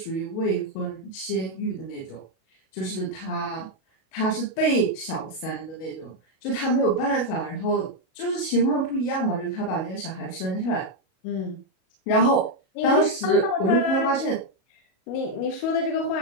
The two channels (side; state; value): right; late; 37 ms